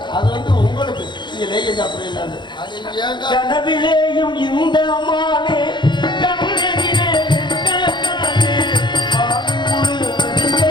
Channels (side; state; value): right; late; 0.22 ms